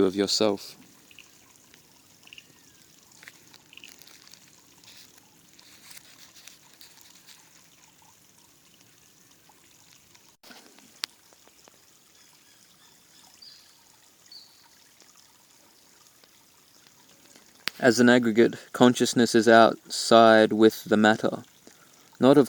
of yourself. As an aggregate, consciousness is outside with the matter. Not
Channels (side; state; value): both; identical; correlation 1.00